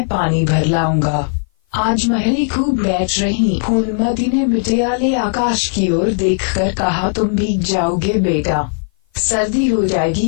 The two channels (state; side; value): silent; right; 56 dB below the other